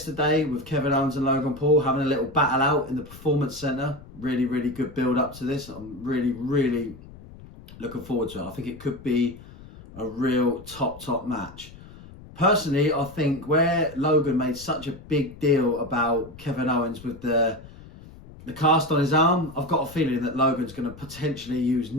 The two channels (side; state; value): left; noise; rumble, 18 dB below the sound